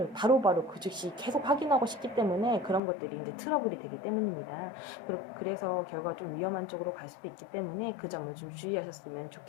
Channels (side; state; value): right; drops out; at 2.8 s